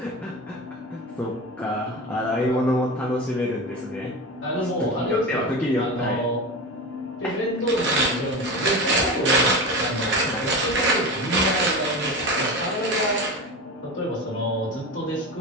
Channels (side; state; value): both; normal; correlation 0.26